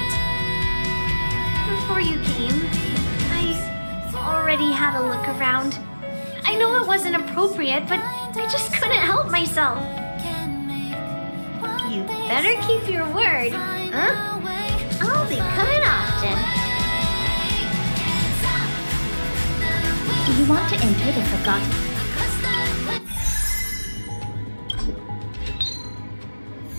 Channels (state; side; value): inverted; both; correlation -1.00